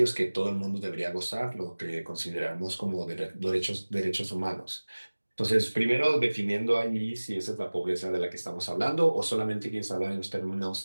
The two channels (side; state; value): both; inverted; correlation -1.00